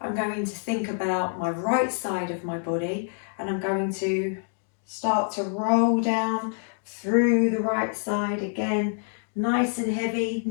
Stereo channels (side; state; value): right; silent; 58 dB below the other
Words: I'm going to think about my right side of my body and I'm going to start to roll down through the right side again, nice and heavy,